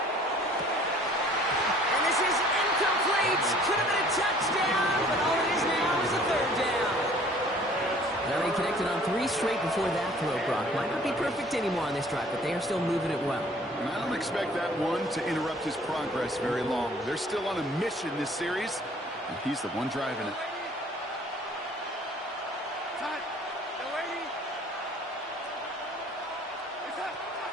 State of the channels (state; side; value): normal; both; correlation 0.53